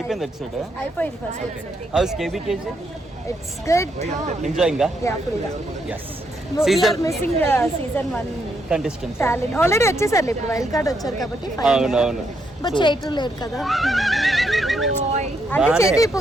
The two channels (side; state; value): both; normal; correlation 0.77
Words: ఎపిసోడ్? అయిపోయింది first episode. How's KBKG? It's good. Enjoying గా? యా ఫుల్ గా. yes. Season missing season 1 contestants talent already వచ్చేసారు, ఇప్పుడు వైల్డ్ కార్డ్ వచ్చారు కాబట్టి అవును. బట్ చేయటం లేదు కదా. అంటే చేతి